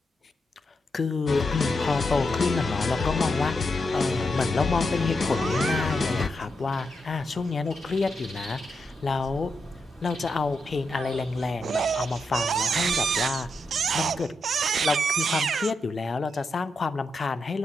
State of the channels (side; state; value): both; normal; correlation 0.84